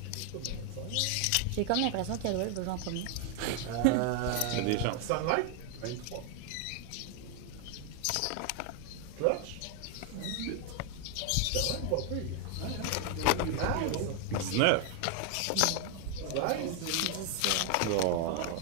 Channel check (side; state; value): both; different; correlation 0.00